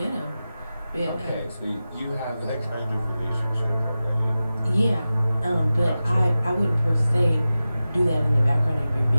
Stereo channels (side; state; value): both; inverted; correlation -0.94